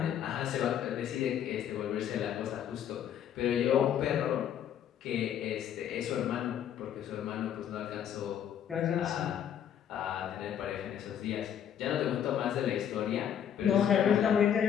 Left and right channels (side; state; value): right; quieter; 9.4 dB